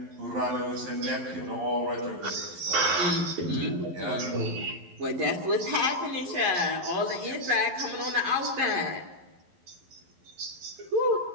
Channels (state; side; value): late; left; 11 ms